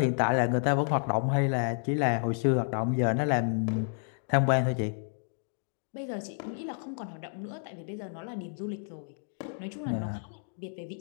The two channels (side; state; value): right; silent; digital silence